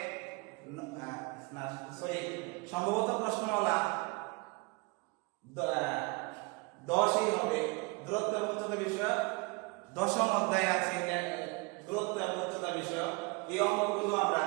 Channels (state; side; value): quieter; left; 28.5 dB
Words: 10ই হবে। দূরত্ব এবং উচ্চতা বিষয়ক 10ম অধ্যায় আছে দূরত্ব এবং উচ্চতা বিষয়ক। এই অঙ্কগুলো আমরা